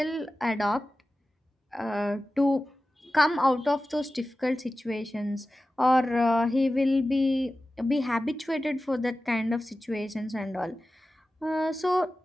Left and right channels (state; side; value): normal; both; correlation 0.95